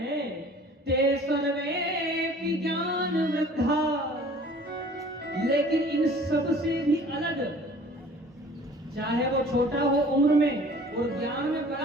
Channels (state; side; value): normal; both; correlation 0.49